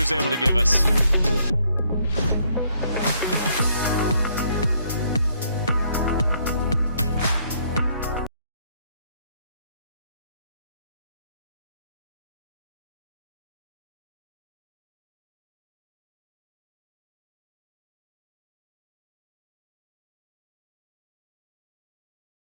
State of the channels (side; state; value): both; inverted; correlation -0.69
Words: able to give us.